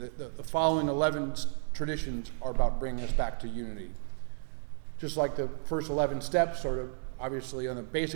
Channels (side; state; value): left; silent; digital silence